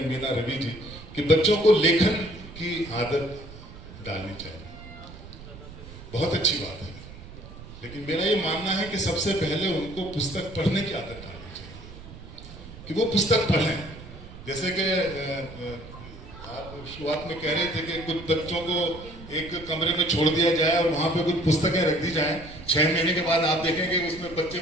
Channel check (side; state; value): right; noise; rumble, 15 dB below the sound